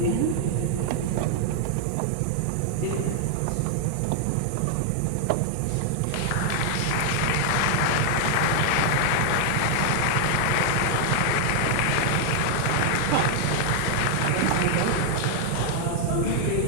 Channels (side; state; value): both; different; correlation 0.00